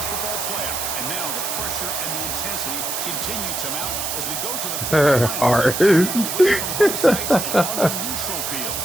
football playoff, and now the pressure and the intensity continue to mount as we go to the quarterfinals.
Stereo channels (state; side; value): noise; right; hiss, 3 dB below the sound